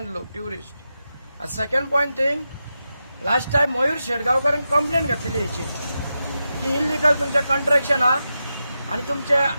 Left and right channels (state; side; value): inverted; both; correlation -0.89